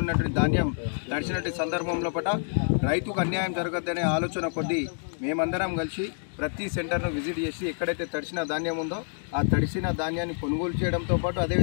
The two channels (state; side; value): silent; right; 60 dB below the other